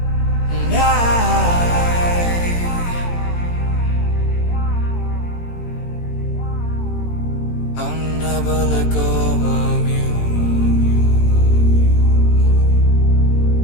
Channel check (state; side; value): late; right; 18 ms